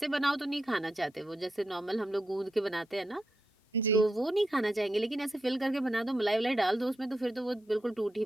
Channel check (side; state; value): both; normal; correlation 0.85